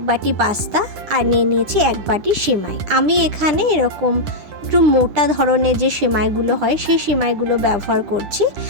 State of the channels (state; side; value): late; left; 9.9 ms